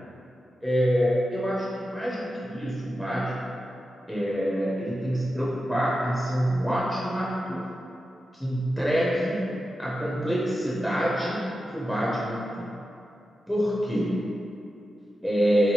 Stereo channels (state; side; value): normal; both; correlation 0.91